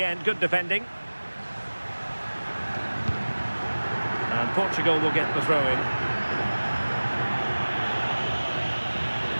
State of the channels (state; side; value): inverted; both; correlation -1.00